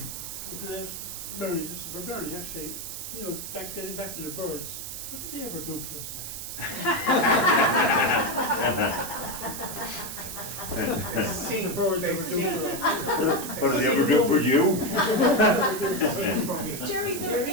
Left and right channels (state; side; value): noise; right; hiss, 8 dB below the sound